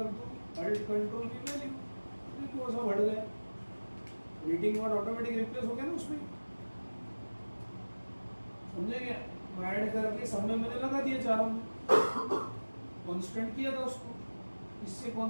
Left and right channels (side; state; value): both; inverted; correlation -1.00